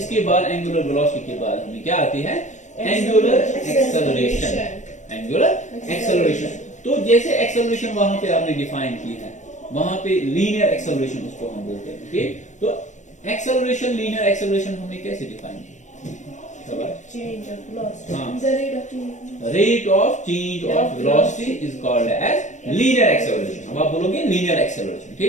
बाद एंगुलर वेलोसिटी के बाद हमें क्या आती है, एंगुलर एक्सेलरेशन, एंगुलर एक्सेलरेशन। तो जैसे एक्सेलरेशन वहां पे आपने डिफाइन की है, वहां पे लीनियर एक्सेलरेशन उसको हम बोलते हैं, ठीक। तो एक्सेलरेशन, लीनियर एक्सेलरेशन हमने कैसे डिफाइन की, rate of change of velocity is called as linear acceleration. अब आप बोलोगे लीनियर एक्सेलरेशन,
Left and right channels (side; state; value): right; late; 0.35 ms